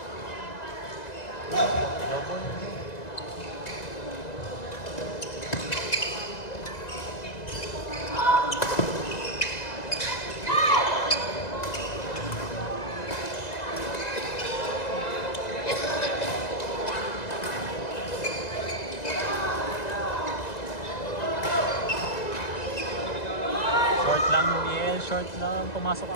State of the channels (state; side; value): late; right; 1.9 ms